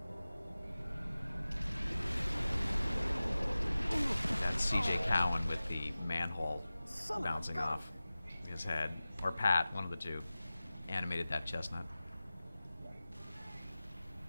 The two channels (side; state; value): both; inverted; correlation -0.97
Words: That's CJ Cowan with the manhole bouncing off his head. Or Pat, one of the two, animated that chestnut.